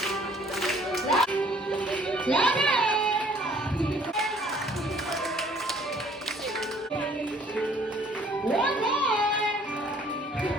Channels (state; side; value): normal; both; correlation 0.58